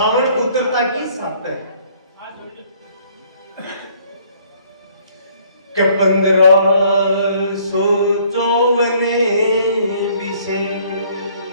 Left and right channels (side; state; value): both; inverted; correlation -0.61